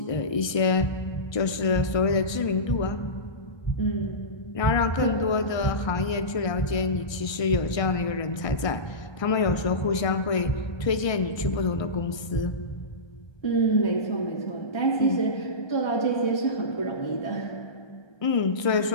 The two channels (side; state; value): right; late; 1.3 ms